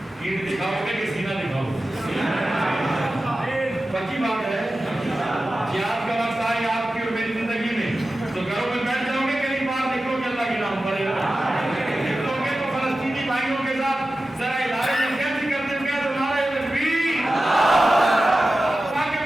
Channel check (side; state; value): both; normal; correlation 0.94